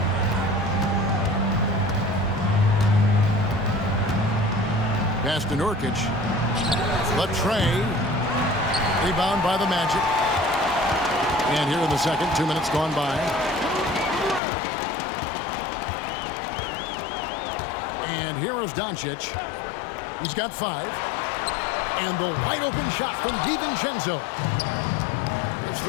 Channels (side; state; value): right; drops out; at 14.4 s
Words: Pass to Nurkic. Latrey. Rebound by the Magic. And here in the second, 2 minutes gone by. And here is Doncic. He's got 5. And the wide open shot from DiVincenzo. His